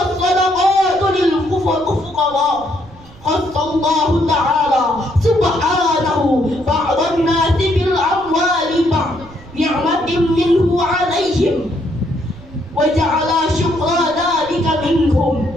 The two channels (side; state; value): right; noise; rumble, 21 dB below the sound